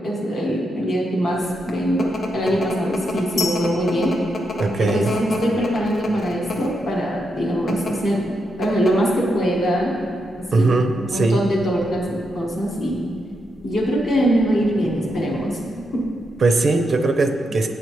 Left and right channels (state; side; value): normal; both; correlation 0.83